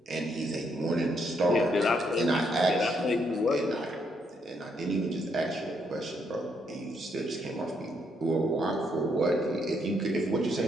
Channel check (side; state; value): both; normal; correlation 0.75